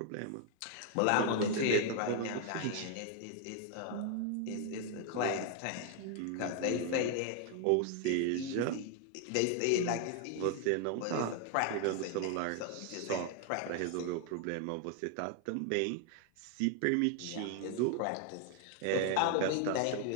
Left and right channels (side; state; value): both; different; correlation 0.00